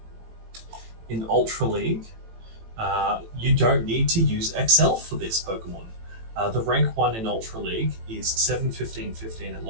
In Ultra League, you don't need to use XL for this Pokemon. The rank 1 in Ultra League is 7, 15, 15 at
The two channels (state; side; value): late; left; 18 ms